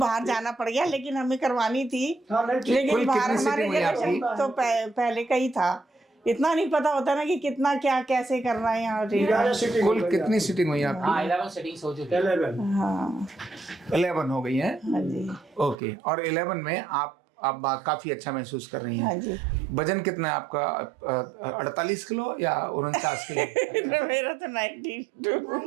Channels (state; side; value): drops out; left; at 15.8 s